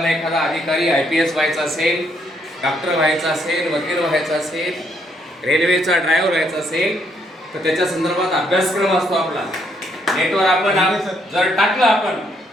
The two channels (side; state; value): both; normal; correlation 0.72